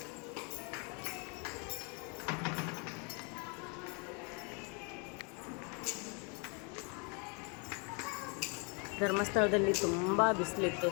ಧರ್ಮಸ್ಥಳದಲ್ಲಿ ತುಂಬ ಬಿಸಿಲಿತ್ತು,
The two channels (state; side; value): quieter; right; 35.2 dB